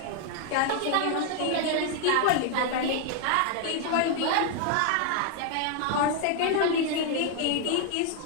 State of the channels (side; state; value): both; different; correlation 0.00